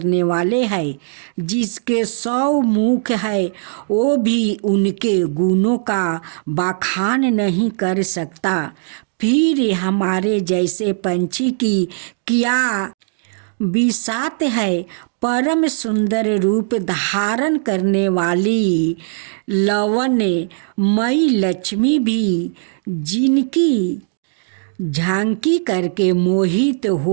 वाले हैं, जिसके 100 मुख है वो भी उनके गुणों का बखान नहीं कर सकता। फिर हमारे जैसे पंछी की क्या बिसात है। परम सुंदर रूप धारण करने वाली लवणमयी लक्ष्मी भी जिनकी झांकी करके मोहित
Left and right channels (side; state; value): left; silent; digital silence